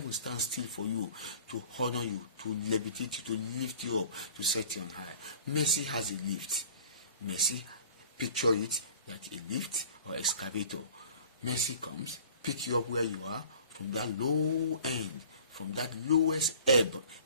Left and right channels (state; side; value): inverted; both; correlation -0.48